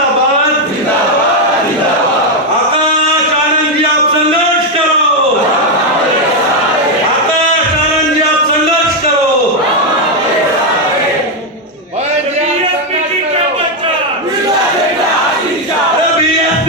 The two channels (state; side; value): normal; both; correlation 0.03